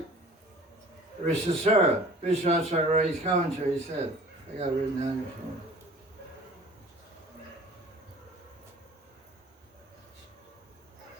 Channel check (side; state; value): both; normal; correlation 0.47